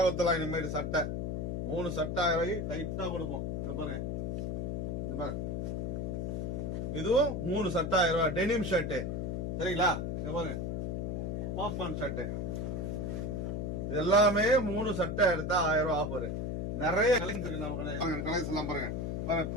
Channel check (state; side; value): noise; left; hum, 2 dB below the sound